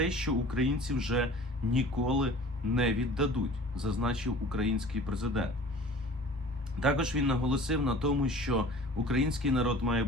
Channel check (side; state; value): both; normal; correlation 0.44